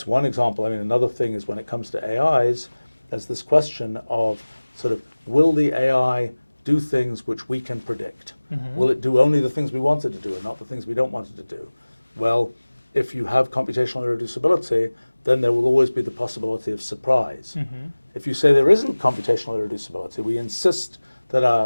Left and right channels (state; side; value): inverted; both; correlation -1.00